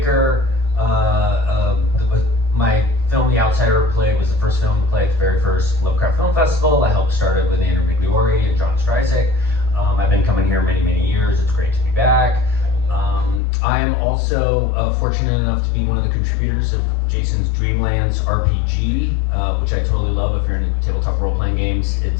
My film, The Outsider Play, was the first film to play at the very first Lovecraft Film Festival. I helped start it with Andrew Migliori and John Stryzik. I've been coming here many, many years. It's great to be back. I am also fortunate enough to be one of the contributors of Jason's Dreamlands RPG, which I totally love. If you're into tabletop role-playing games,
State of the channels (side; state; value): right; drops out; at 13.4 s